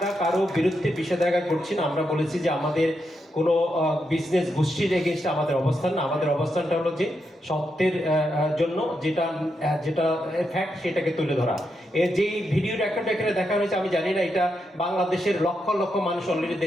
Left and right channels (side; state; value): both; normal; correlation 0.83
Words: কারো বিরুদ্ধে বিষেধাজ্ঞা করছি না। আমরা বলেছি যে আমাদের কোনো বিজনেস গোষ্ঠীর এগেনস্টে আমাদের অবস্থান না। আমাদের অবস্থানটা হলো যে সত্যের জন্য যেটা যেটা ফ্যাক্ট সেটাকে তুলে ধরা। এর যে ভিডিও রেকর্ড এখানে দেখা হয়েছে আমি জানি না, এটা বাংলাদেশের লক্ষ লক্ষ মানুষ অলরেডি